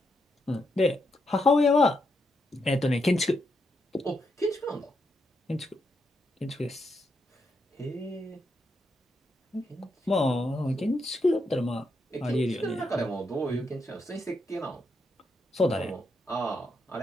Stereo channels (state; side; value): normal; both; correlation 0.81